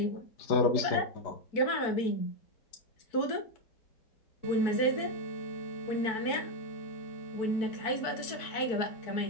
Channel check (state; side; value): late; right; 4.6 ms